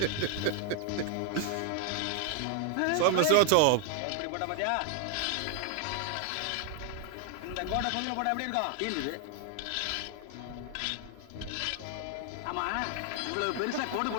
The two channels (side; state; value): both; different; correlation 0.00